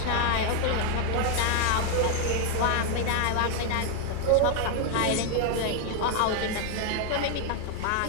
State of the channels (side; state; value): both; different; correlation 0.00